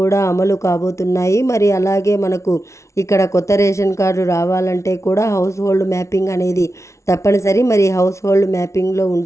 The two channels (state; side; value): late; right; 0.14 ms